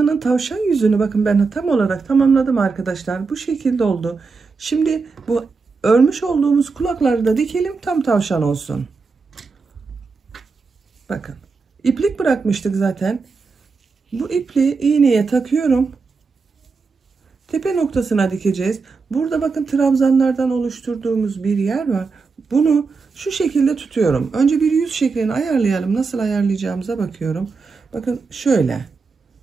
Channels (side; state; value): left; quieter; 4.5 dB